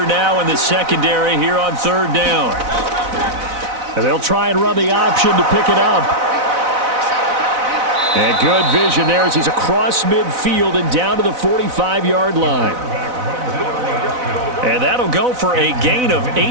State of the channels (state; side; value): late; left; 4.0 ms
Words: now in the secondary here on 3rd down. And they'll try and run the option to pick it up. And good vision there as he's across midfield and down to the 45-yard line. And that'll go for a gain of